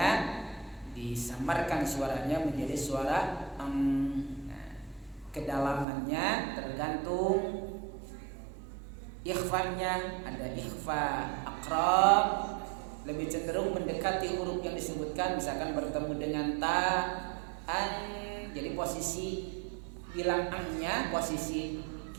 disamarkan suaranya menjadi suara kedalamannya tergantung ikhfanya. Ada ikhfa aqrab, lebih cenderung mendekati huruf yang disebutkan, misalkan bertemu dengan ta, an. Jadi posisi bilang an-nya, posisi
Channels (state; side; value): drops out; left; at 5.9 s